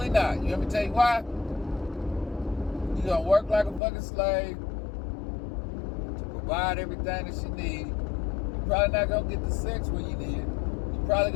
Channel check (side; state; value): right; drops out; at 3.8 s